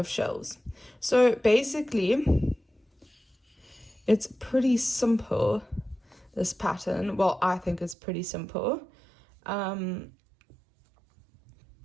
shells. So basically, it's pretty simple, this pattern. Well, I think it's pretty simple.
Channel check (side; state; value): left; drops out; at 8.0 s